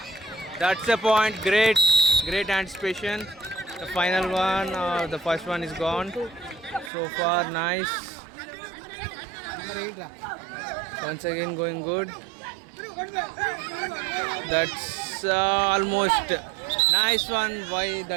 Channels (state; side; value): drops out; left; at 6.9 s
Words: That's the point. Great anticipation. The final one, the first one is gone. So far, nice. Once again, going good. That's almost nice one. Why